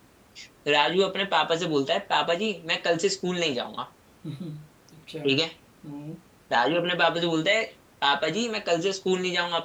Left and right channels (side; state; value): both; identical; correlation 1.00